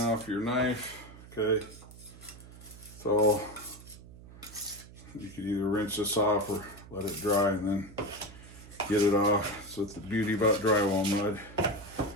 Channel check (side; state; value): right; noise; hum, 18 dB below the sound